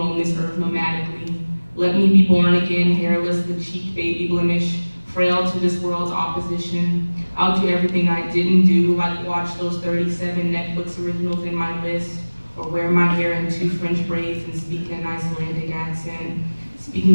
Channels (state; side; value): inverted; both; correlation -1.00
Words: this earth nomadically. Let me be born again, hairless, the cheek baby blemish, frail to this world's opposition. I'll do everything I didn't do, like watch those 37 Netflix originals in my list, or wear my hair in 2 French braids and speak in an Icelandic accent.